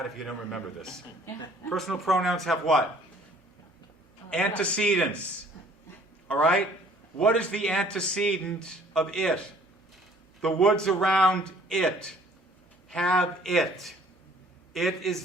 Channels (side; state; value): both; normal; correlation 0.56